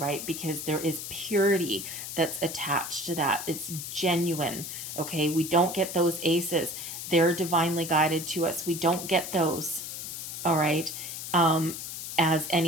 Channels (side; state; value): left; noise; hiss, 7 dB below the sound